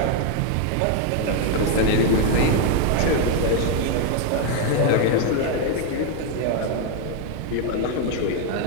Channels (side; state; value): both; different; correlation 0.00